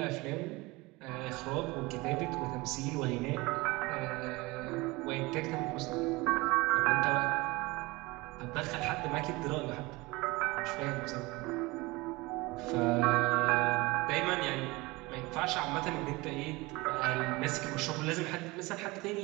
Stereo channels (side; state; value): left; quieter; 22.8 dB